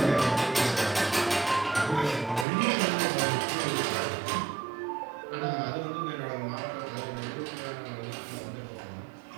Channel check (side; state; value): left; drops out; at 2.5 s